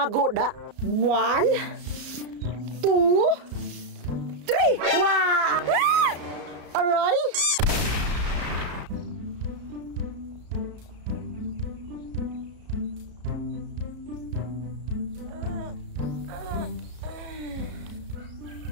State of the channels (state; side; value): late; left; 34 ms